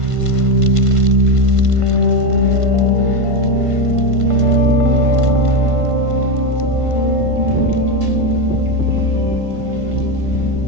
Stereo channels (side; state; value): left; late; 1.5 ms